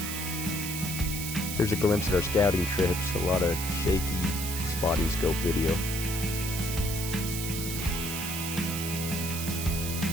Here's a glimpse at our scouting trips, a lot of shaky spotting scope video.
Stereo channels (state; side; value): noise; right; hiss, 5 dB below the sound